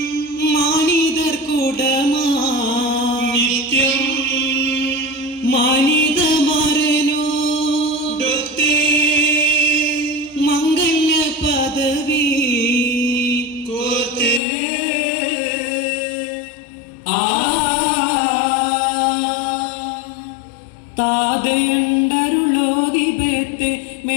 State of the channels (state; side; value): drops out; right; at 14.4 s